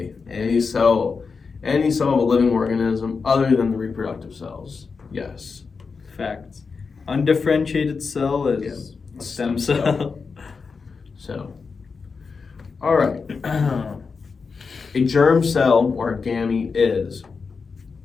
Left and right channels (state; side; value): quieter; right; 5.0 dB